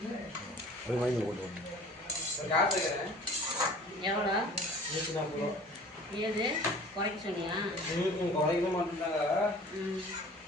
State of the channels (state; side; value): normal; both; correlation 0.46